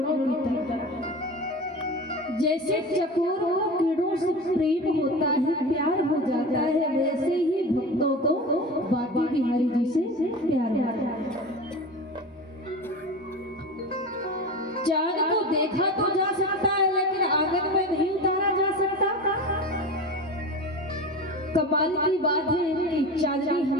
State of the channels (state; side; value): normal; both; correlation 0.30